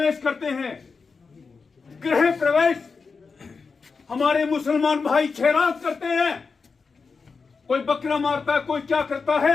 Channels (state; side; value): quieter; right; 4.8 dB